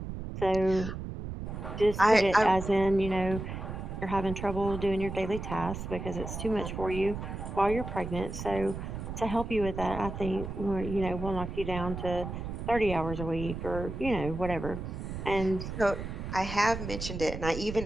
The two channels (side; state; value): right; noise; rumble, 7 dB below the sound